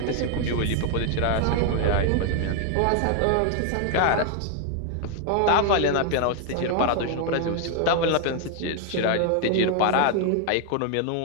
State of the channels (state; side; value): different; both; correlation 0.00